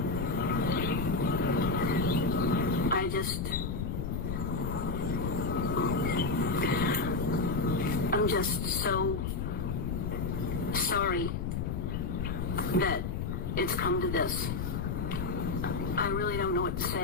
I'm just so sorry that it's come to this. I really don't know what to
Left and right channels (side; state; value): left; noise; rumble, 2 dB below the sound